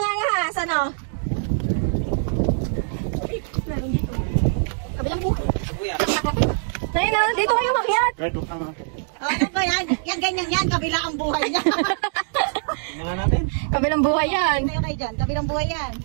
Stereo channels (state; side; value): silent; left; digital silence